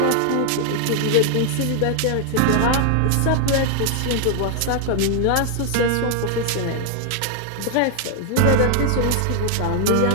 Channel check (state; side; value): different; both; correlation 0.00